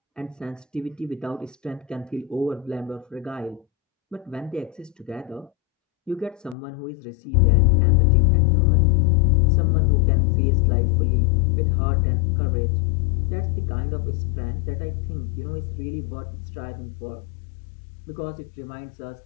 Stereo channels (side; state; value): right; drops out; at 6.6 s